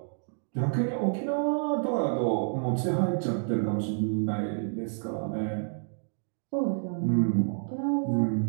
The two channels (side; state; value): left; silent; digital silence